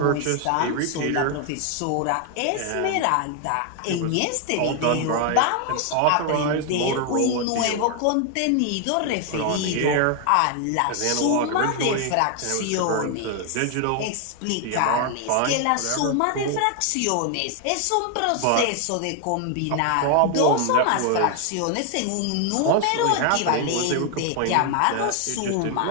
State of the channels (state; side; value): different; both; correlation 0.01